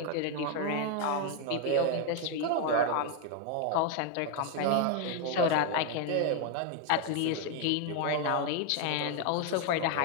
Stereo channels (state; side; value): different; both; correlation 0.01